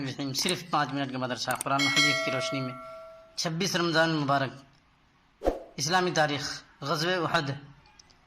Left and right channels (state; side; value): identical; both; correlation 1.00